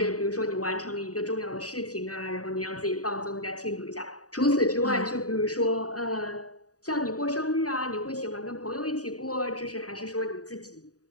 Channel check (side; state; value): right; late; 0.67 ms